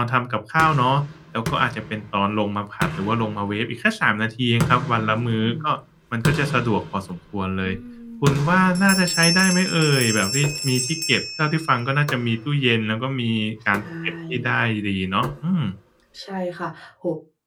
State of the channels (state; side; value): identical; both; correlation 1.00